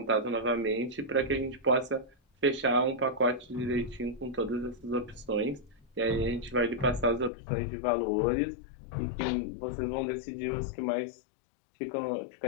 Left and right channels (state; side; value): drops out; right; at 7.3 s